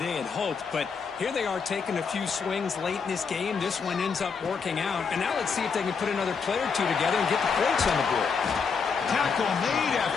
had hoped, but here they are taking a few swings late in this game. This one ends up working out, and now let's see if they can put another play or two together and get the points on the board. Tackle made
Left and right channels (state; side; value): quieter; right; 5.7 dB